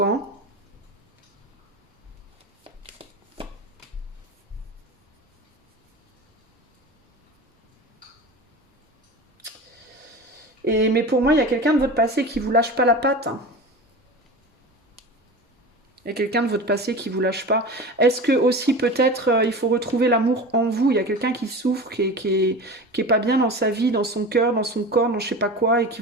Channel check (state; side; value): normal; both; correlation 0.32